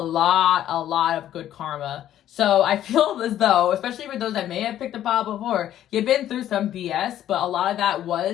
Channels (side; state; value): right; quieter; 11.8 dB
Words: of good karma. So I feel as though, especially for those that may have picked a pile before, you've been through some BS, but a lot of that